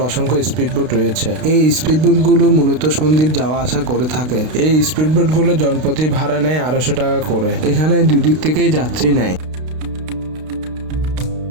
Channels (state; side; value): late; left; 32 ms